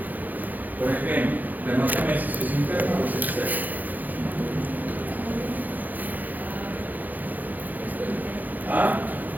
Por ejemplo, la hematomesis es interna o es externa. ¿Ah?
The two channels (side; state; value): left; late; 0.083 ms